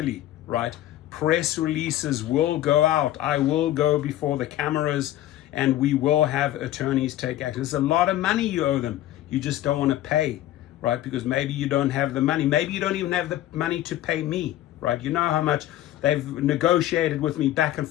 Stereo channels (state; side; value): quieter; right; 13.7 dB